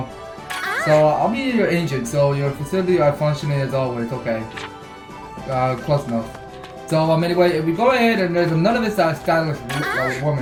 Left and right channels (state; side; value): identical; both; correlation 1.00